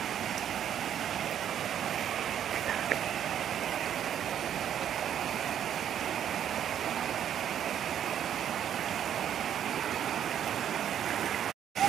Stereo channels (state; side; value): quieter; left; 9.7 dB